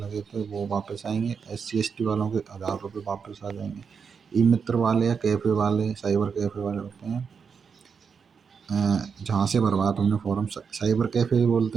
थे वो वापस आएंगे। SC ST वालों के 1000 रुपये वापस आ जाएंगे। ई मित्र वाले या कैफ़े वाले, साइबर कैफ़े वाले होते हैं, जहाँ से भरवाया तुमने फॉर्म, साइबर कैफ़े भी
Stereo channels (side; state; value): left; quieter; 6.1 dB